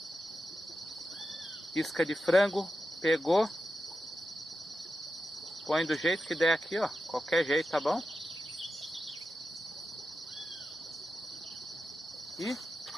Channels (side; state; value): both; normal; correlation 0.90